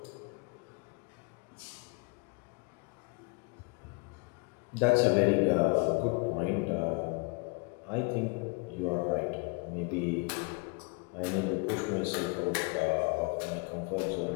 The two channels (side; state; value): right; quieter; 31.8 dB